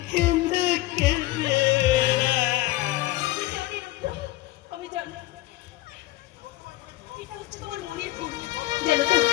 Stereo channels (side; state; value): right; quieter; 18.0 dB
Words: কেঁদে কেঁদে। আমি জানি এটা হচ্ছে তোমার মনের ভুল। জানো তো,